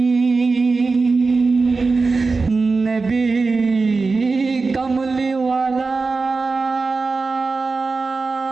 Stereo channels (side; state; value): left; quieter; 4.1 dB